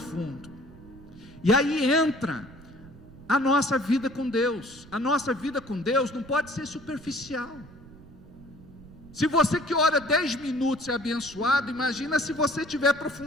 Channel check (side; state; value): right; noise; rumble, 20 dB below the sound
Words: E aí entra a nossa vida com Deus. A nossa vida com Deus não pode ser superficial. Se você que ora 10 minutos é abençoado, imagina se você tiver